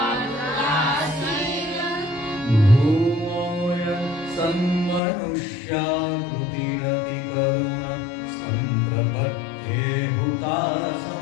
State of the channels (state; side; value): drops out; right; at 5.0 s